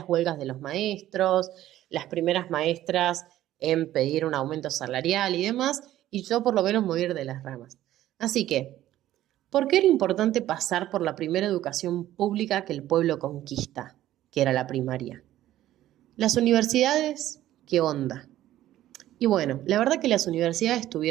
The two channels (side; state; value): left; quieter; 13.7 dB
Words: huelgas de los maestros, las primeras maestras en pedir un aumento salarial y demás, y yo por lo menos me voy a ir de las ramas. Así que, ¿por qué era importante pasar por la primera educación pública que el pueblo conquista, que era la primaria? Las universidades, ¿qué onda? Y bueno, la verdad que las universidades